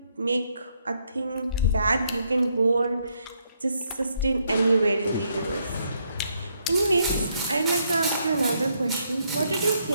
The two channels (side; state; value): both; inverted; correlation -0.74